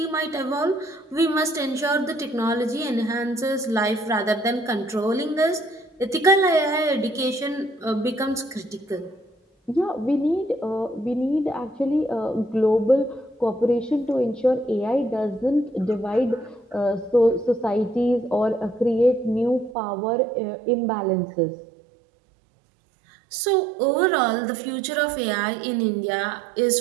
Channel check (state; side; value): drops out; left; at 19.8 s